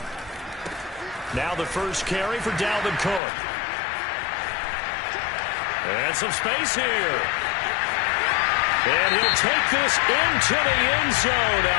Now the first carry for Dalvin Cook. And some space here. And he'll take this into the end zone.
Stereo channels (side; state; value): right; drops out; at 3.2 s